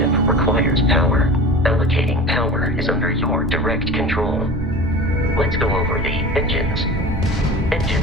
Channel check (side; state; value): both; normal; correlation 0.36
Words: requires power. Allocating power is under your direct control. Let's go over the engines.